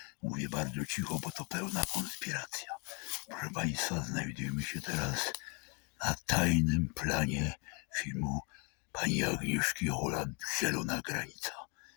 Mówię bardzo cicho, bo to pełna konspiracja. Proszę Państwa, znajdujemy się teraz na tajnym planie filmu pani Agnieszki Holland „Zielona granica”.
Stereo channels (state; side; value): quieter; right; 33.7 dB